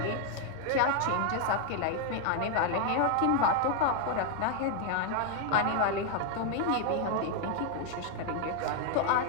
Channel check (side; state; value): both; different; correlation 0.00